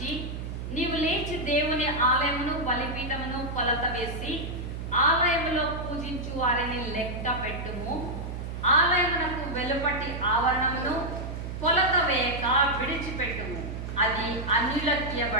నీవు లేచి దేవుని ఆలయమును బలిపీఠమును కొలత వేసి ఆలయములో పూజించు వారిని లెక్క పెట్టుము. ఆలయమునకు వెలుపటి ఆవరణమును కొలత వేయక విడిచిపెట్టుము. అది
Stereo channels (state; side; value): noise; right; hum, 6 dB below the sound